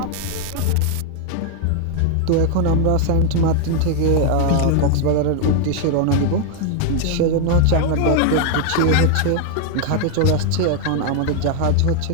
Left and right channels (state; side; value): different; both; correlation 0.00